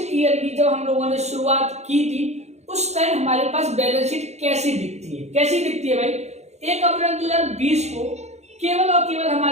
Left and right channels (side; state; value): left; late; 0.32 ms